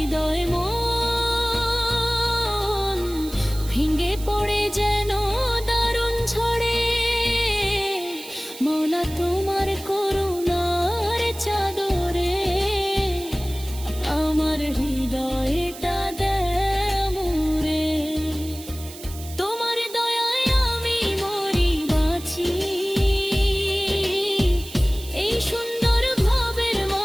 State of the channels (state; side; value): noise; right; hiss, 15 dB below the sound